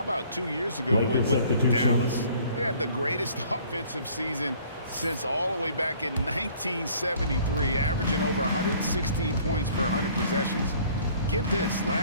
about 2 years ago with Dallas? They had the greatest offensive season since all the way back in 1973, averaging over 116 points per 100 possessions. Get this,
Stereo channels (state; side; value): inverted; both; correlation -0.55